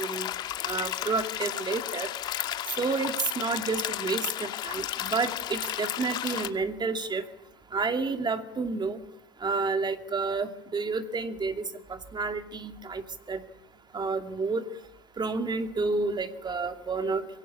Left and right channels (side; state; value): both; normal; correlation 0.39